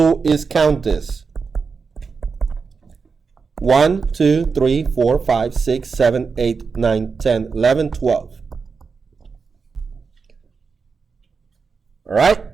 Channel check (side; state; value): left; quieter; 5.1 dB